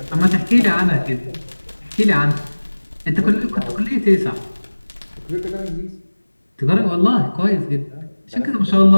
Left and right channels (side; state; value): both; inverted; correlation -1.00